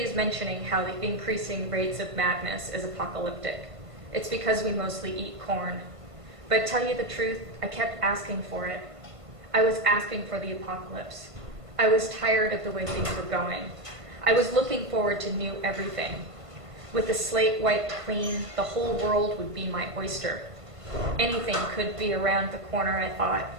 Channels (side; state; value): left; late; 1.5 ms